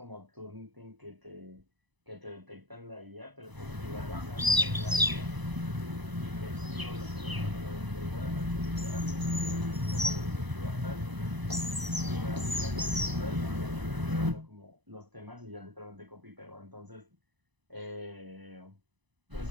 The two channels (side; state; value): left; late; 1.0 ms